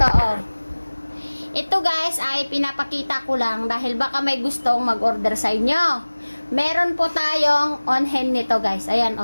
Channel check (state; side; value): inverted; both; correlation -1.00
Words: oh. Ito guys ay pinapakita ko lang dahil baka may gustong mag-order sa inyo. Meron po tayong on-hand nito guys. Ayan